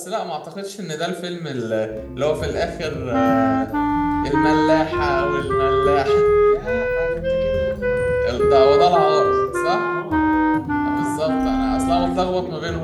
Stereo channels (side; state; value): both; identical; correlation 1.00